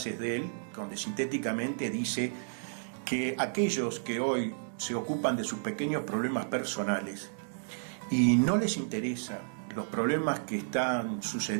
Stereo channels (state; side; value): silent; left; digital silence